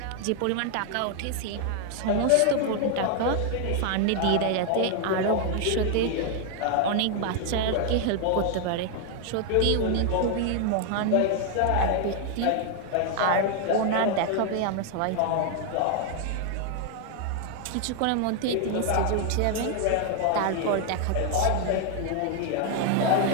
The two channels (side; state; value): both; different; correlation 0.00